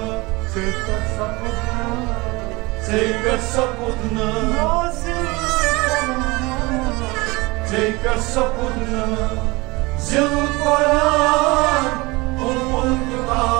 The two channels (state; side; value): quieter; left; 23.8 dB